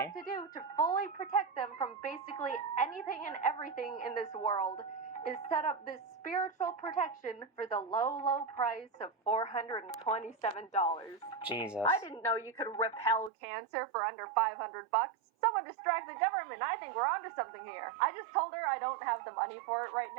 have to do to fully protect them from basically anything and everything in this world is set up this spiritual protection for the low, low price of $427. Jesus. I didn't know you could repel cancer for under $500. Someone distract the government. I think we're onto something here. I just told her I don't have the money for it right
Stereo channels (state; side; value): drops out; left; at 13.3 s